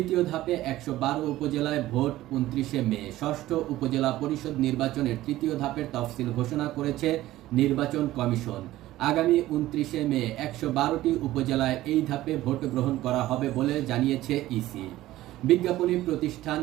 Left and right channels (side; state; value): left; quieter; 15.6 dB